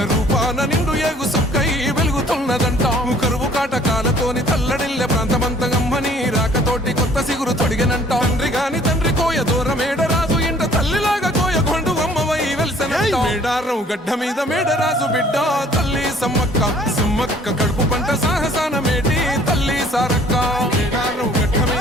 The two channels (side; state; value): both; normal; correlation 0.57